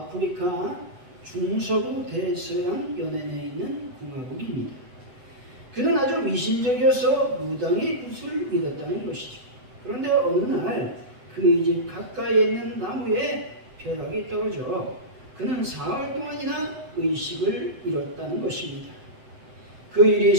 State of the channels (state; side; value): late; left; 7.9 ms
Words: 중서부 대서양 연안에 있는 공화국입니다. 그는 아주 미신적이어서 무당의 굿을 믿었다는 것이죠. 그런데 어느 날 그의 집 가까이에 있는 나무에 벼락이 떨어져 그는 사흘 동안이나 의식을 잃었다는 것입니다. 그 일이